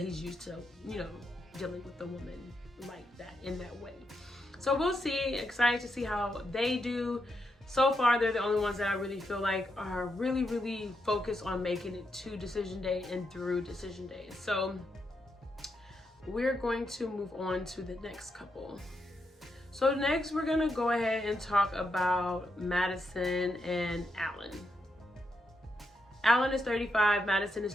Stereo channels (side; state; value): both; normal; correlation 0.82